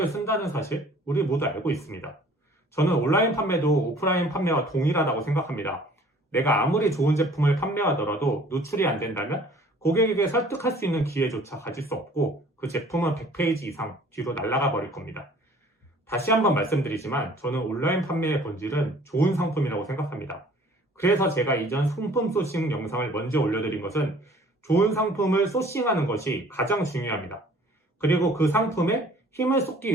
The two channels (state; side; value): normal; both; correlation 0.52